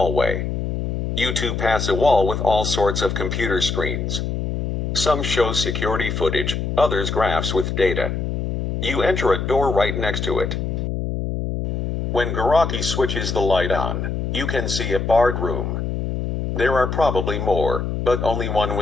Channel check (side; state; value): left; noise; hum, 2 dB below the sound